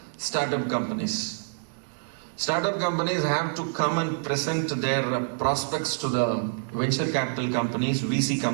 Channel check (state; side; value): silent; left; 60 dB below the other